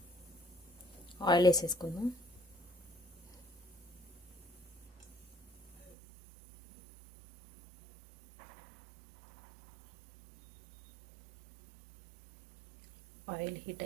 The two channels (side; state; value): left; drops out; at 6.0 s